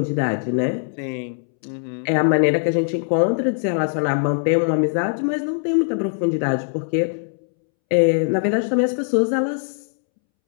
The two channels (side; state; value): right; silent; 65 dB below the other